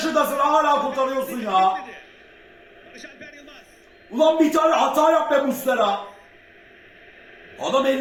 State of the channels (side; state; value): both; identical; correlation 1.00